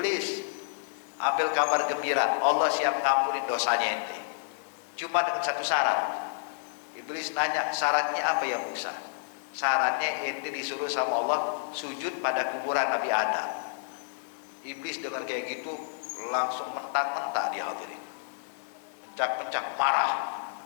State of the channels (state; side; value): silent; right; digital silence